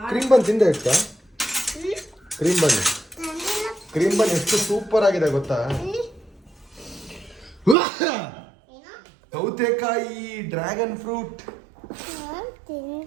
ಕ್ರೀಮ್ ಬನ್ ತಿಂದೆ ಇಷ್ಟ. ಕ್ರೀಮ್ ಬನ್ ಎಷ್ಟು ಸೂಪರ್ ಆಗಿದೆ ಗೊತ್ತಾ? ಸೌತೆಕಾಯಿ, ಡ್ರ್ಯಾಗನ್ ಫ್ರೂಟ್.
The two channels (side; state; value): left; drops out; at 7.8 s